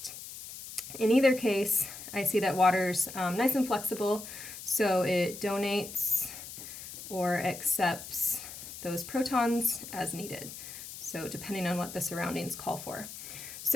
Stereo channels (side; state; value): left; noise; hiss, 12 dB below the sound